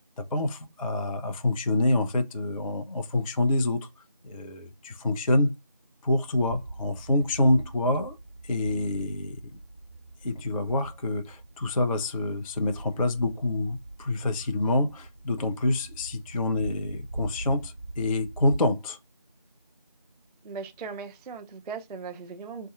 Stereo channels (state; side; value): inverted; both; correlation -0.74